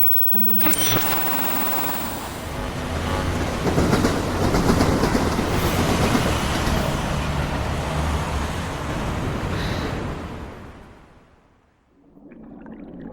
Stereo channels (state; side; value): identical; both; correlation 1.00